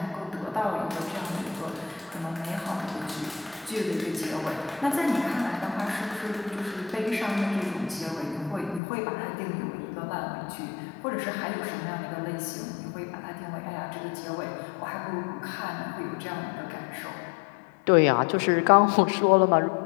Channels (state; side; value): drops out; right; at 8.8 s